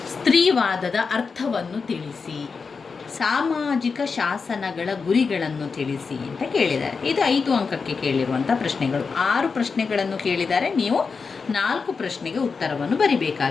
ಸ್ತ್ರೀವಾದದ ಅರ್ಥವನ್ನು ತಿಳಿಸಿ, ಸಾಮಾಜಿಕ ಶಾಸನಗಳ ಗುರಿಗಳನ್ನು ತಿಳಿಸಿ ಅಂತ ಕೇಳಿದ್ದಾರೆ. ಇದು 5 ಅಂಕಕ್ಕೆ ಕೇಳಿರುವಂಥ ಪ್ರಶ್ನೆಗಳು. 6 ಪ್ರಶ್ನೆಗಳನ್ನು ಕೇಳಿದ್ದಾರೆ. ನೀವು 4 ಪ್ರಶ್ನೆಗೆ ಉತ್ತರವನ್ನು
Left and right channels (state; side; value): quieter; right; 5.0 dB